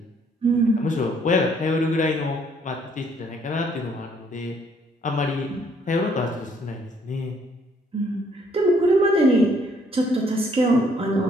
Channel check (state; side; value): normal; both; correlation 0.65